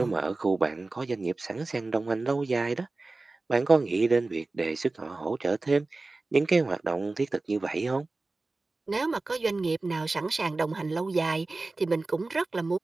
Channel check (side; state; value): left; quieter; 3.3 dB